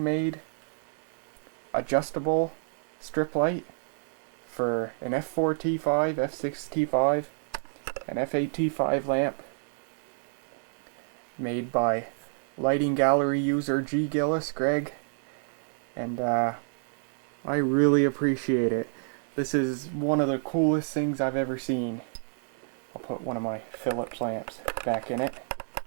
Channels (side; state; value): left; silent; digital silence